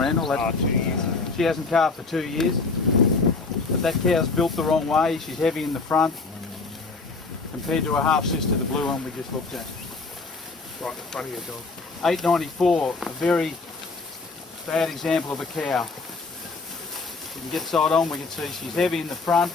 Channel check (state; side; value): quieter; right; 3.9 dB